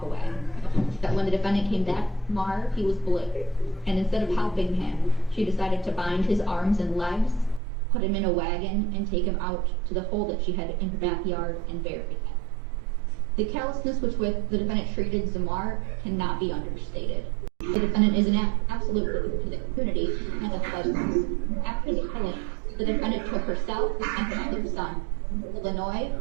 away. That when the defendant came back to Zamar, he was blue, and instead of helping him, she decided to bind his arms and legs, put him in a wagon, and take him out to the hole that she had in her backyard and bury him. The callousness with which the defendant treated Zamar cannot be understated. The defendant is an absolute threat to the community and the pleasures. After the killing, the defendant took herself and her other son to Illinois,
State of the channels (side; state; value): left; drops out; at 7.6 s